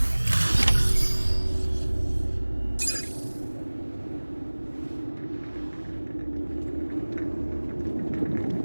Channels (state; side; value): inverted; both; correlation -1.00